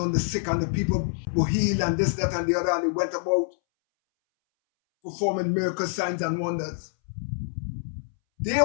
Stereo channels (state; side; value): silent; right; 61 dB below the other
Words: on the sick and the people were healed and this, that, and the other, and they went about performing miracle signs and wonders. They